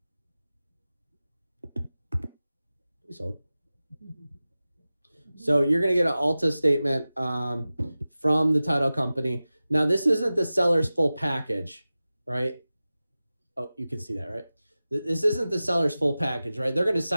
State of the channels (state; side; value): inverted; both; correlation -0.96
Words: Please hold. So you're going to get an Alta statement from the title company. Now, this isn't the seller's full package, right? Oh, you can see that, right? This isn't the seller's full package, right? They're going to